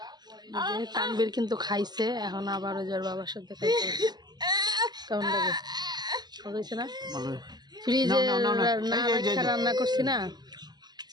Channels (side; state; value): left; late; 0.20 ms